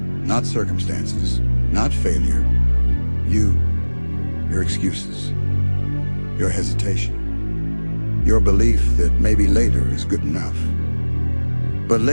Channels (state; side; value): inverted; both; correlation -1.00